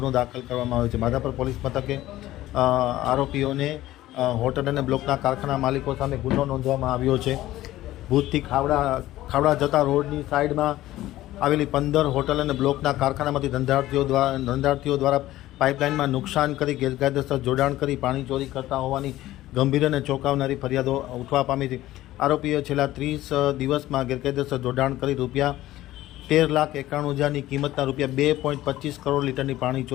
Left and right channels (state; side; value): quieter; right; 15.4 dB